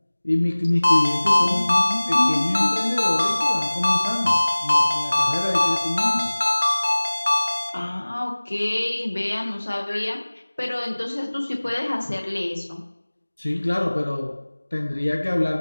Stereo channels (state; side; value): inverted; both; correlation -1.00